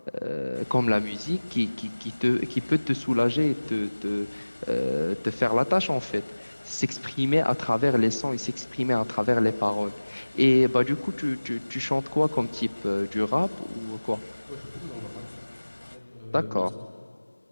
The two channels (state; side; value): inverted; both; correlation -1.00